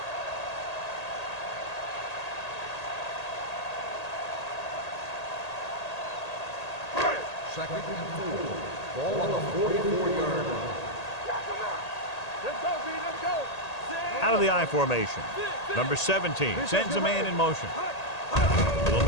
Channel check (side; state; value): right; late; 1.8 ms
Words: Second and 4. Ball on the 44-yard line. Let's go, B. Let's go. Out of the I formation. Number 17 sends a man in motion. Little